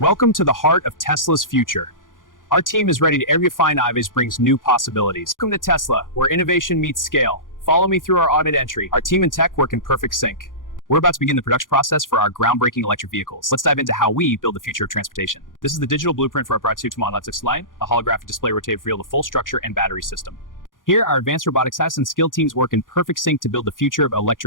Welcome to the heart of Tesla's future. Our team is ready to every fine Ives brings new possibilities. Welcome to Tesla, where innovation meets scale. Follow me through our audit entry. Our team and tech work in perfect sync. We're about to begin the production process for our groundbreaking electric vehicles. Let's dive into how we build the future of transportation. This is the digital blueprint for our prototype electric line, a holographic display rotated to reveal the full structure and battery system. Here, our advanced robotic science and skilled teams work in perfect sync to build the future of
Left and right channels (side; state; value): right; late; 0.89 ms